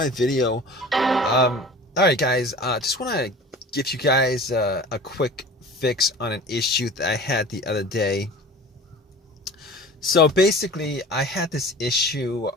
video. All right, guys. Just want to give you guys a quick fix on an issue that I had the other day. So basically, I had this issue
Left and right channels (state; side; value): normal; both; correlation 0.40